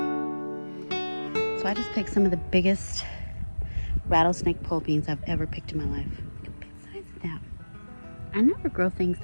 So I just picked some of the biggest rattlesnake pole beans I've ever picked in my life. Look at the big size of that. I never grow things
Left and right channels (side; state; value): both; inverted; correlation -1.00